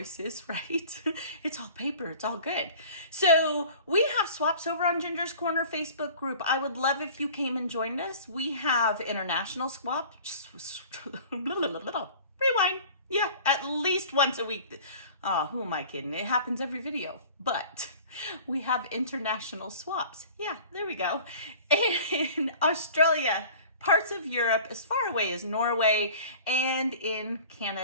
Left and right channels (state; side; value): inverted; both; correlation -0.44